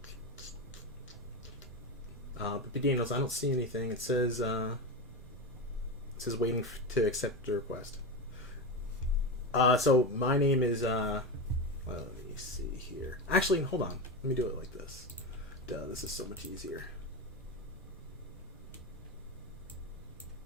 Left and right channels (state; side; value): normal; both; correlation 0.18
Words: But Daniels, I don't see anything. It says waiting to accept the request. So my name is well, let me see here. Actually, hold on. Let me do it like this. Duh, this is so much easier.